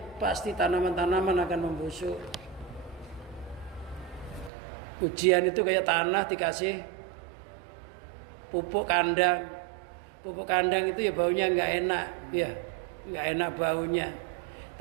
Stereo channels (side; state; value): left; drops out; at 4.5 s